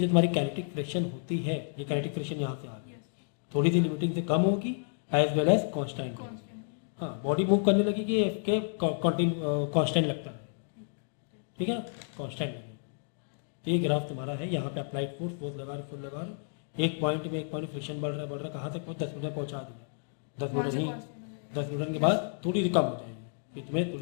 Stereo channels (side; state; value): right; silent; digital silence